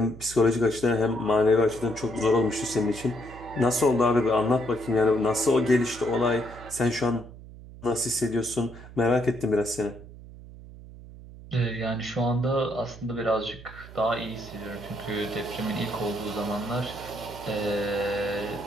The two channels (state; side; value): noise; right; hum, 17 dB below the sound